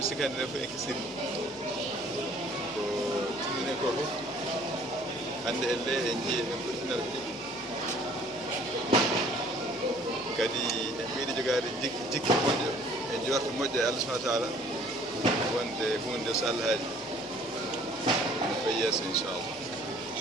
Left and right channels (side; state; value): both; normal; correlation 0.55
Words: sikandi nen fof en kisiri ko timmini ko fof hannde elle en jii en ɓurtinata ɗiɗi kadi en mbiɗi jogaade jikki moƴƴo e jorto moƴƴo e Allah subahana taala wonde hunde so Allah haaji ene fayi yeeso inchallah